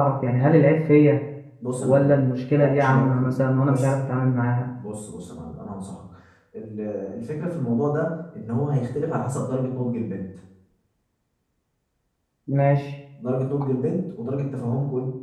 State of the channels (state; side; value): identical; both; correlation 1.00